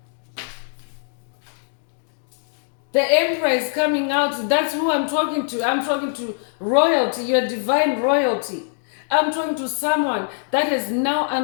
The Emperor is coming out. That's who I'm talking to. I'm talking to royalty, your divine royalty. I'm talking to someone that has now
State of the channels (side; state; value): right; silent; digital silence